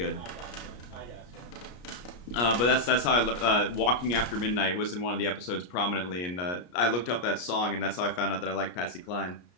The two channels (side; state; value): right; late; 33 ms